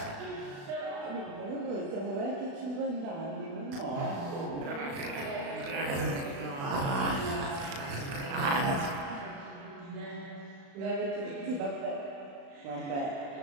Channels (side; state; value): left; late; 36 ms